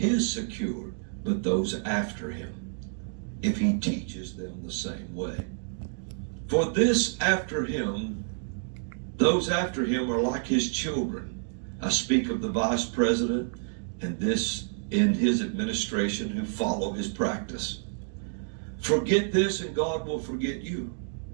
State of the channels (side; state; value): left; silent; digital silence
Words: secured, but those after him, if he teaches them the same way. For this after him, those after him are like his children. I speak of the vice president and this in his administration who follow his practice. Forget this and God will forget you.